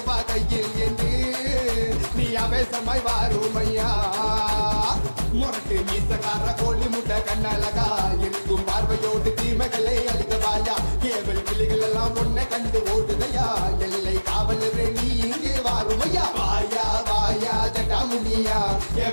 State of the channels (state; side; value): inverted; both; correlation -1.00